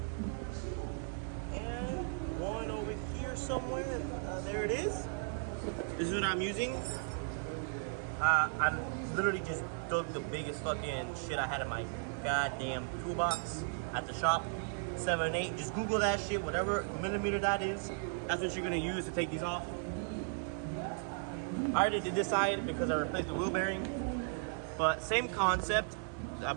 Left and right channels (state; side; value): silent; left; 54 dB below the other